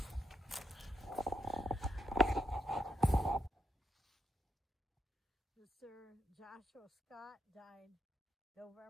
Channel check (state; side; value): normal; both; correlation 0.78